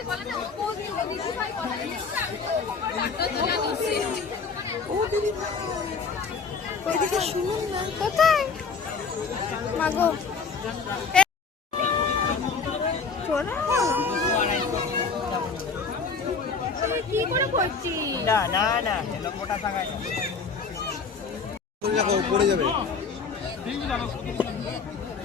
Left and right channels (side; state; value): right; quieter; 5.1 dB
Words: ওইদিকে শুনুন না, কোথায় মাগো কি করে করছিস? দেখো পড়ে যাবে।